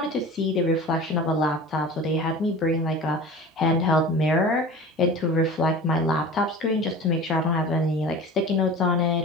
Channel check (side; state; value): both; normal; correlation 0.36